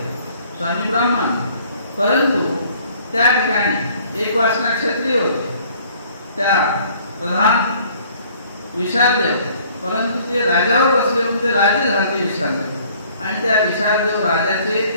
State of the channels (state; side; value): inverted; both; correlation -0.57